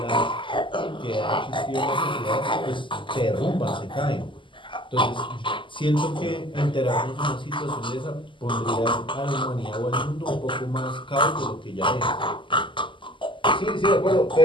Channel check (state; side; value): late; right; 0.24 ms